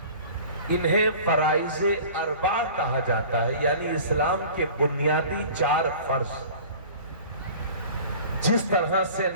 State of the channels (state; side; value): inverted; both; correlation -0.43